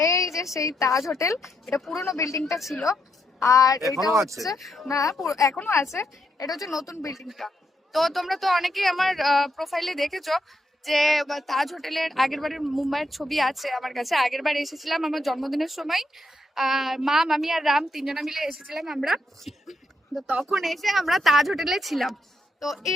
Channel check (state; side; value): normal; both; correlation 0.80